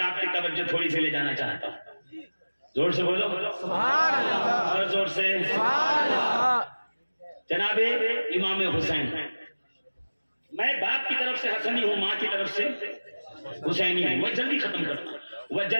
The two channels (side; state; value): both; inverted; correlation -1.00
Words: کی توجہ تھوڑی سی لے جانا چاہتا ہوں. زور سے بولو سبحان اللہ، اور زور سے. سبحان اللہ. جناب امام حسین، میں باپ کی طرف سے حسنی ہوں، ماں کی طرف سے حسینی ہوں. میں جلدی ختم کرتا ہوں.